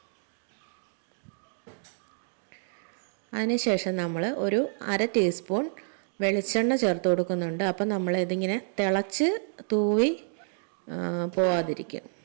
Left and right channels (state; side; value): silent; left; digital silence